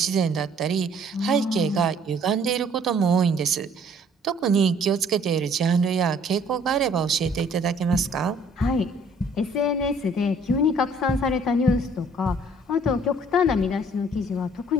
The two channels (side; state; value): both; normal; correlation 0.58